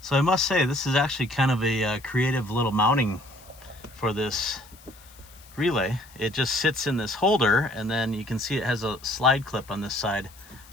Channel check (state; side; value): noise; left; hiss, 23 dB below the sound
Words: So I must say, this is actually kind of a creative little mounting for this relay. It just sits in this holder, and then you can see it has a slide clip on this side.